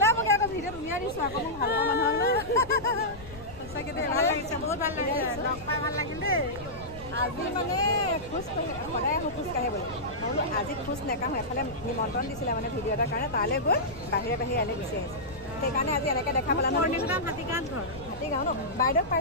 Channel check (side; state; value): left; noise; rumble, 16 dB below the sound